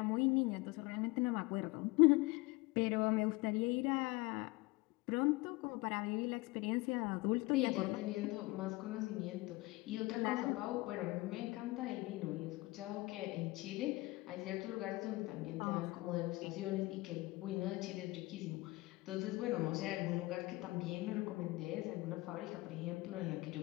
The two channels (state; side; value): quieter; right; 21.9 dB